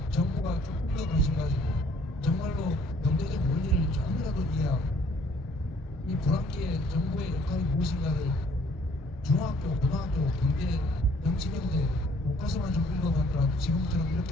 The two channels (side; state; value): both; normal; correlation 0.61